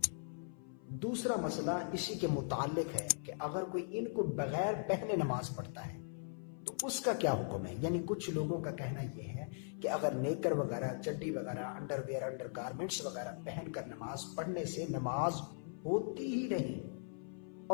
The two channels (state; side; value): silent; right; 52 dB below the other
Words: دوسرا مسئلہ اسی کے متعلق ہے کہ اگر کوئی ان کو بغیر پہنے نماز پڑھتا ہے تو اس کا کیا حکم ہے۔ یعنی کچھ لوگوں کا کہنا یہ ہے کہ اگر نیکر وغیرہ، چڈی وغیرہ، انڈر ویئر، انڈر گارمنٹس وغیرہ پہن کر نماز پڑھنے سے نماز ہوتی ہی نہیں،